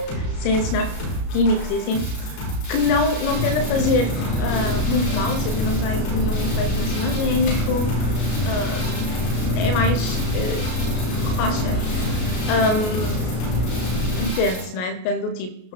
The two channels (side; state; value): right; late; 33 ms